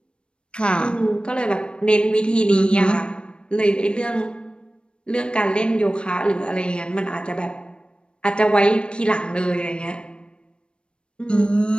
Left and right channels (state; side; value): late; right; 0.055 ms